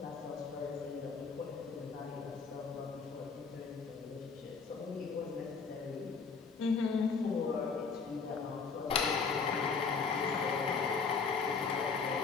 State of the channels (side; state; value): right; quieter; 5.2 dB